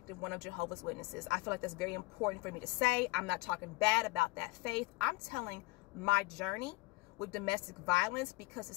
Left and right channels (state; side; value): quieter; right; 21.4 dB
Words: one of Jehovah's Witnesses. I feel like that's very important for me to say. I'm not talking bad about that faith. I'm telling my journey with domestic violence because